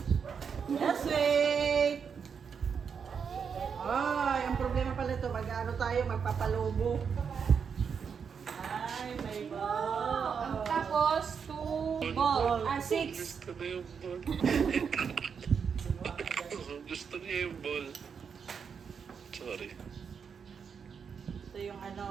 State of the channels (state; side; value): quieter; left; 6.5 dB